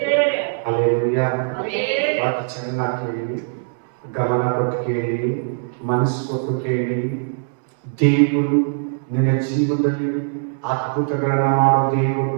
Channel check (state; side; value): silent; left; digital silence